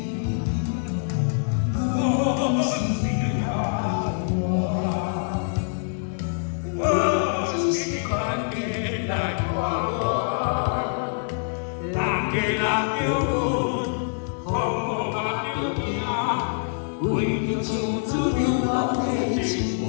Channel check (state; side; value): silent; right; 59 dB below the other